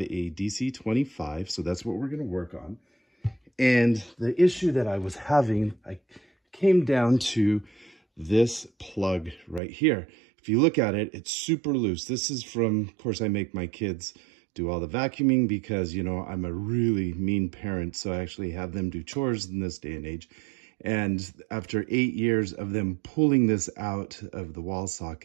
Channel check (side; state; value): left; drops out; at 9.6 s